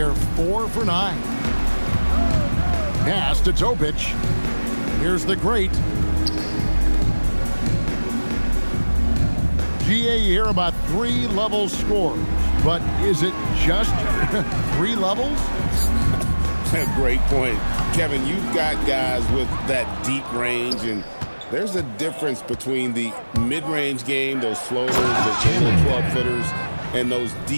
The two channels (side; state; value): both; inverted; correlation -1.00